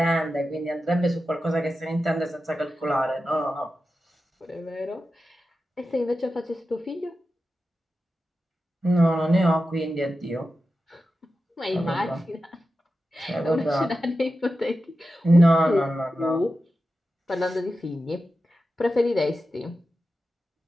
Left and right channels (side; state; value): both; normal; correlation 0.91